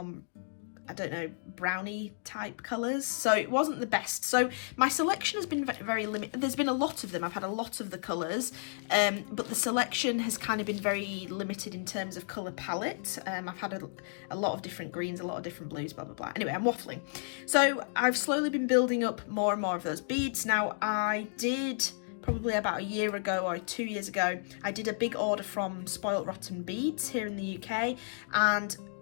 I don't know, brownie type colours. So it wasn't the best. So my selection has been very limited. There's been a lot of them. I've had a lot of the colours, but the selection has kind of been very limited in terms of colour palette. I've had a lot of different greens, a lot of different blues, blah, blah, blah. Anyway, I'm waffling. So I've slowly been building up more and more of those beads. Now I did, probably about a year ago or 2 years ago, I did a big order from Spoilt Rotten Beads here in the UK, and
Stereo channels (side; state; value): right; silent; digital silence